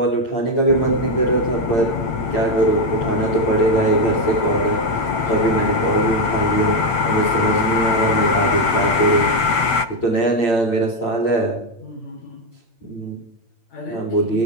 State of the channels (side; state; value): right; late; 8.8 ms